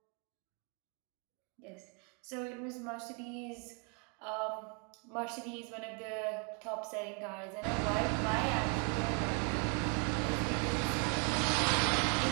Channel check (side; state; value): left; quieter; 34.7 dB